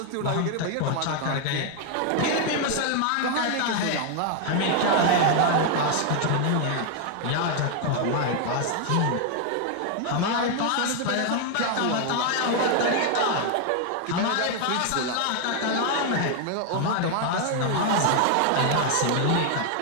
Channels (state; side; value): different; both; correlation 0.00